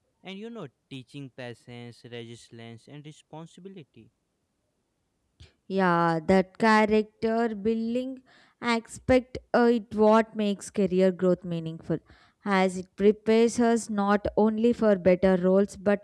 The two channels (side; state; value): both; identical; correlation 1.00